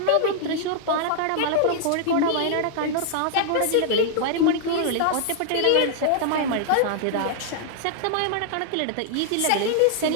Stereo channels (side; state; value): both; different; correlation -0.01